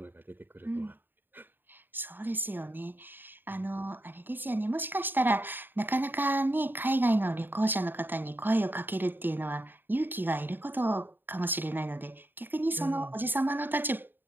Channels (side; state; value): left; late; 0.094 ms